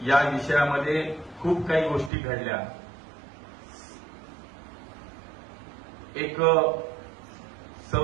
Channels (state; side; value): drops out; left; at 2.1 s